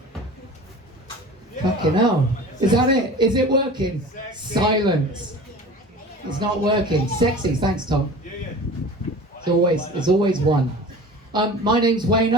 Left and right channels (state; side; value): normal; both; correlation 0.38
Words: Fucking hell. Is that it? Is it working? Silence. It's not working. Sexy. Thanks, Tom. It's always one. My name's